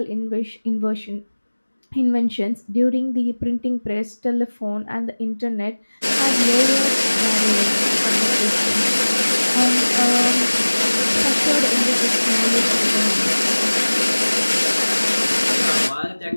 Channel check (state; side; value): inverted; both; correlation -1.00